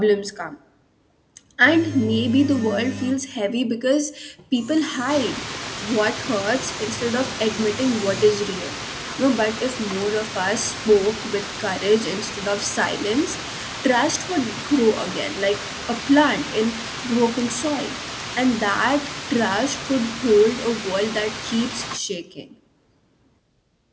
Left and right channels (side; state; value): both; identical; correlation 1.00